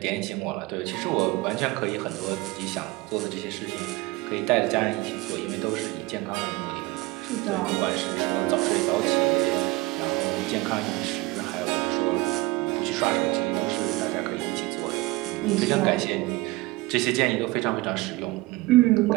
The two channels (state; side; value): quieter; left; 21.2 dB